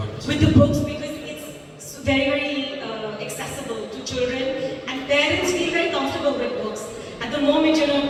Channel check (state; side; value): identical; both; correlation 1.00